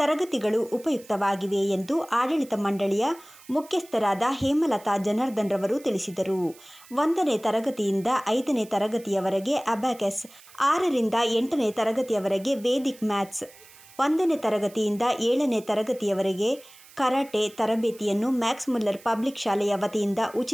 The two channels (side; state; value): right; noise; hiss, 23 dB below the sound